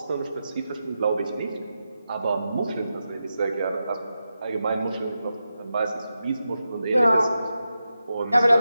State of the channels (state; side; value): inverted; both; correlation -0.90